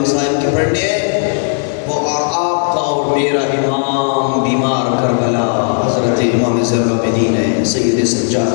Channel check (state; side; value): silent; right; 67 dB below the other